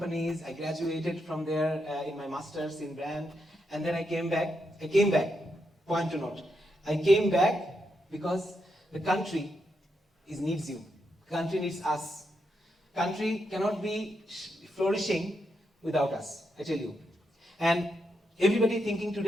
I graduated from there in my master's in brand, and then I came back, point to note. I came back because the country needs you. The country needs us. Country cannot be flourishing without us, I tell you. And everybody thinking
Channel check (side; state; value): both; normal; correlation 0.82